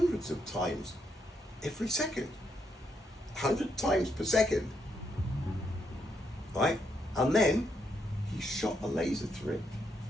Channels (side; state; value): both; normal; correlation 0.78